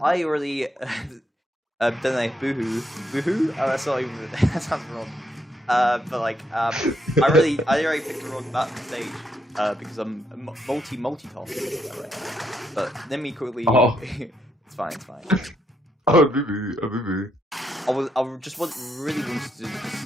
I already don't know, boohoo. Oh, that's not even that sounds wrong. But like, I already picked the wrong map stage because I'm multitasking. But let me quickly. Oh. It's fine. Oh, boo. I just really wanted to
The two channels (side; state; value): both; normal; correlation 0.77